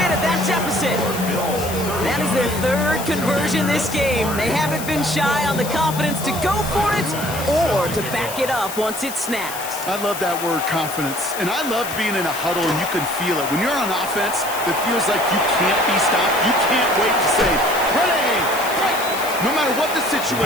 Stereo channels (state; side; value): noise; left; hiss, 9 dB below the sound